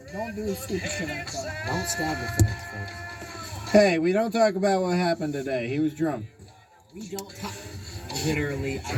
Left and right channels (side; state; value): both; identical; correlation 1.00